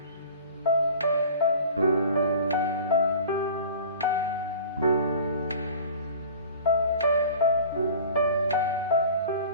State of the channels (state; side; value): inverted; both; correlation -0.42